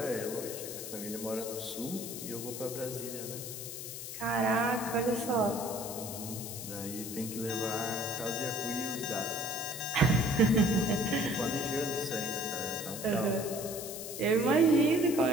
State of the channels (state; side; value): noise; left; hiss, 8 dB below the sound